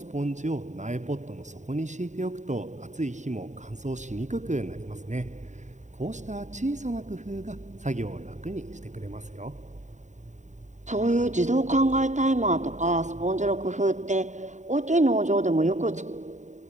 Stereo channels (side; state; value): left; late; 0.34 ms